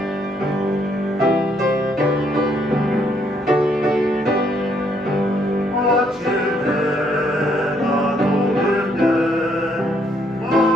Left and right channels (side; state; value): both; normal; correlation 0.70